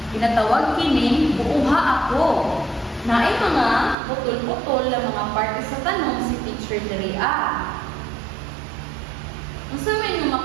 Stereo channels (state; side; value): drops out; left; at 4.0 s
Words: ginatawag kining buuha ako. Naay mga putol-putol na mga parte sa tanong si Teacher Daria. Ang sabi nyo